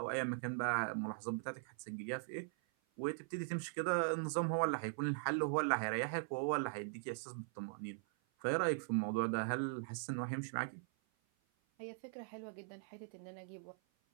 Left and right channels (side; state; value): left; silent; 51 dB below the other